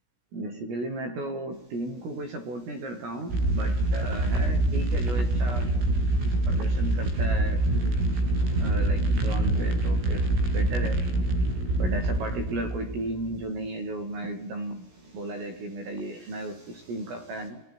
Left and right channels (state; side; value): late; left; 17 ms